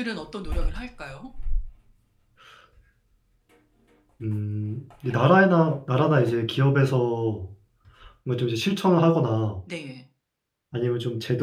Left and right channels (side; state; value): both; identical; correlation 1.00